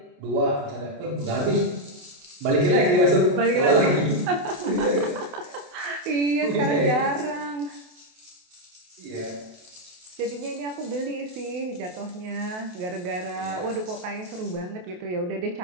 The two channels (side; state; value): left; late; 28 ms